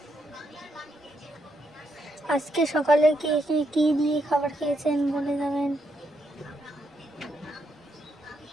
আজকে সকালে কি দিয়ে খাবার খেয়েছেন বলে যাবেন।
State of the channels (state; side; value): normal; both; correlation 0.79